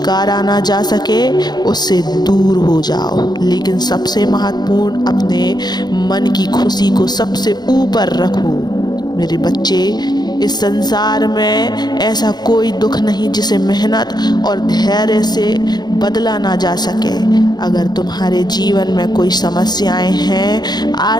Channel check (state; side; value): late; right; 0.20 ms